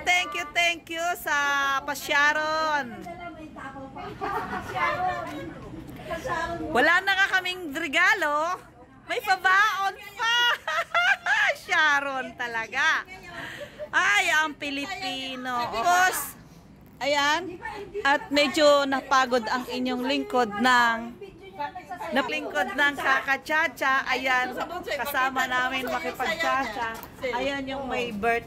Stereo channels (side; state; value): both; identical; correlation 1.00